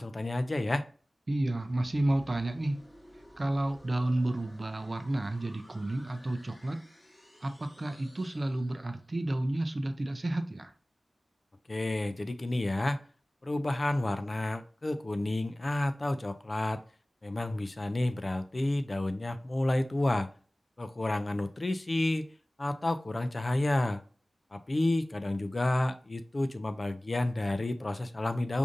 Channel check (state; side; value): normal; both; correlation 0.97